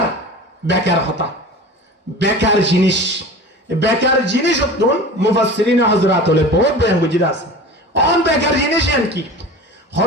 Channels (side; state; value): both; normal; correlation 0.36